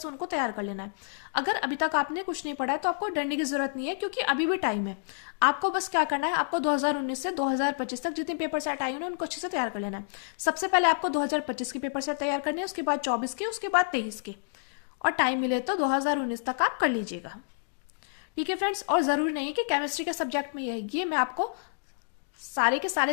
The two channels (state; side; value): silent; right; digital silence